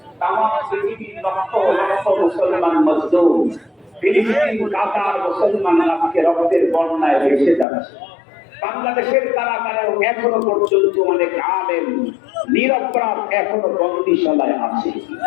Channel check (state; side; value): drops out; right; at 7.7 s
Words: তামাম পৃথিবীর লক্ষ লক্ষ মুসলমান মজদুর ফিলিস্তিন কাতার মুসলমান আজকে রক্তের বন্যায় ভেসে যাচ্ছে বাংলাদেশের কারাগারেও এখনো পর্যন্ত অনেক আলেম নিরপরাধ এখনো বন্দিশালায় আছে